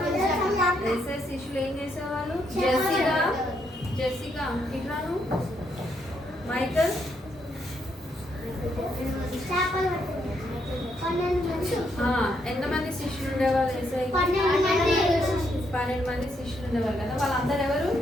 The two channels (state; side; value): normal; both; correlation 0.76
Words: ఏసయ శిష్యులు ఏం చేసేవాళ్ళు? జెసికా ఇట్లాను మైకల్ ఎంతమంది శిష్యులు ఉండేవాళ్ళు? ఏసై 12 మంది శిష్యులు ఉండేవాళ్ళు కదా. వాళ్ళందరూ ఎవరు?